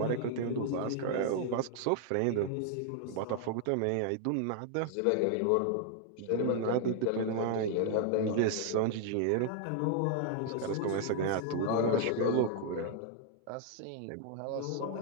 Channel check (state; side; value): different; both; correlation 0.00